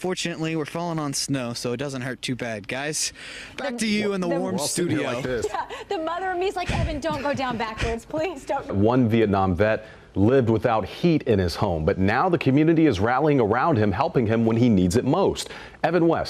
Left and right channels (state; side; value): identical; both; correlation 1.00